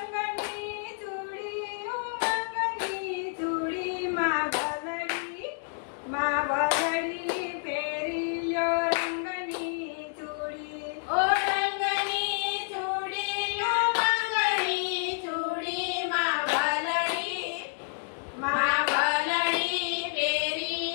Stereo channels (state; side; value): silent; right; digital silence